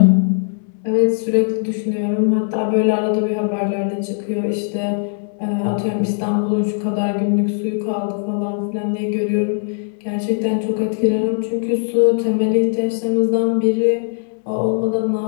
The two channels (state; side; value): silent; right; 65 dB below the other